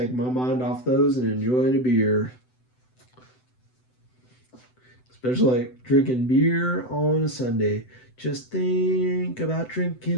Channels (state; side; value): late; right; 7.9 ms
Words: my mind off those and enjoying a beer. Especially like drinking beer on a Sunday. Just think about